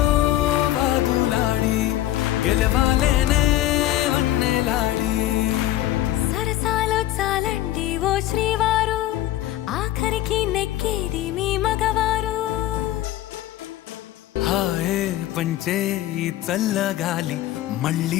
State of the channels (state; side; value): quieter; right; 14.1 dB